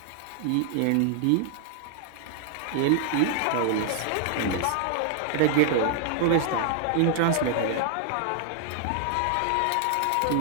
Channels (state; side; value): different; both; correlation 0.00